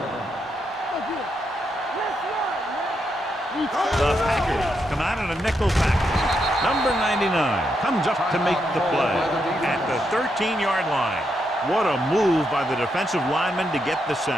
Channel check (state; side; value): normal; both; correlation 0.81